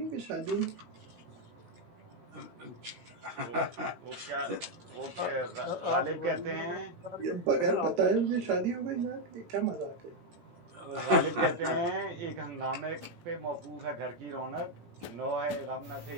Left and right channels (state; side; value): late; left; 16 ms